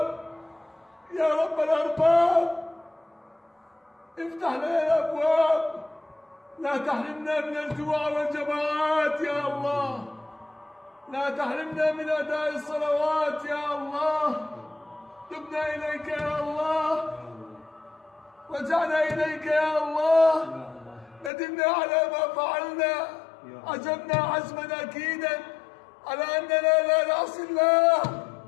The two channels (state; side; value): drops out; right; at 21.3 s